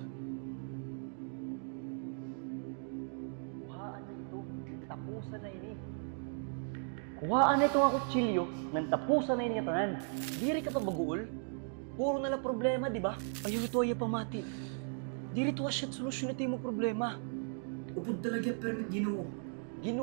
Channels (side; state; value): left; silent; 53 dB below the other